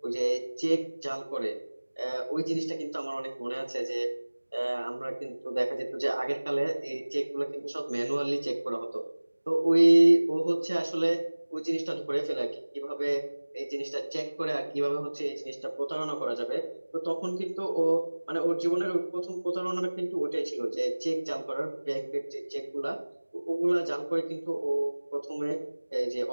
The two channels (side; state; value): both; inverted; correlation -1.00